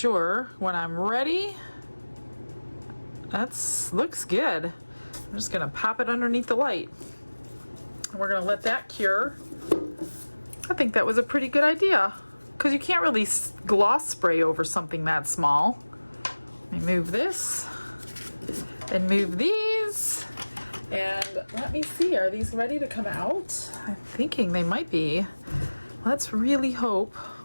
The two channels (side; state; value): both; inverted; correlation -1.00